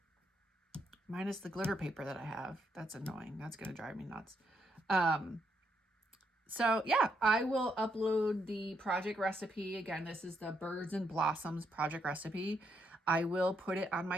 Minus the glitter paper that I have. That's annoying. That's going to drive me nuts. So yeah, I will upload the project recipe. Again, this is the Birds and Blossoms project recipe. I will put it on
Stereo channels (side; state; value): both; normal; correlation 0.77